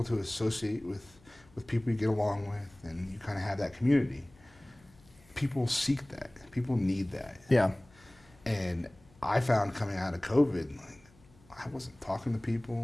to associate with people you get along with and you kind of have that community. People seek that. People need that. Yeah. And I found coming out of COVID, like, I wasn't talking to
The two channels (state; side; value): noise; left; hum, 28 dB below the sound